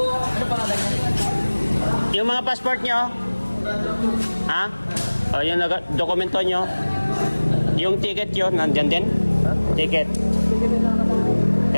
Ano pa nga Yung mga passport nyo? Ha? O, yung dokumento nyo? Yung ticket yun, nandyan din? Ticket.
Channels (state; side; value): inverted; both; correlation -1.00